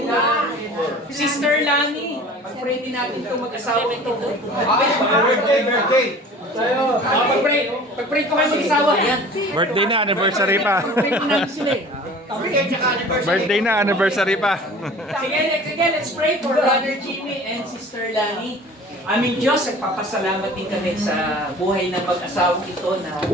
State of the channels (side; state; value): both; normal; correlation 0.44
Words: Sister Lani. Pag-pray din natin itong mag-asawa ito. Birthday. Pag-pray ko kayo mag-asawa. Yan. Birthday na, anniversary pa. Pag-pray ko namin sila eh. Birthday na, anniversary pa. Sige, let's pray for Brother Jimmy and Sister Lani. Aming Diyos, nagpapasalamat din kami sa buhay ng mag-asawang ito na